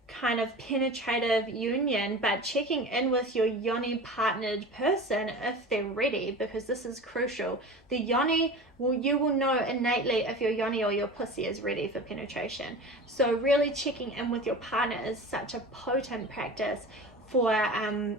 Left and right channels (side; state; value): both; normal; correlation 0.34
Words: kind of penetrative union, but checking in with your yoni partnered person if they're ready, because this is crucial. The yoni, you will know innately if your yoni or your pussy is ready for penetration. So really checking in with your partner is such a potent practice for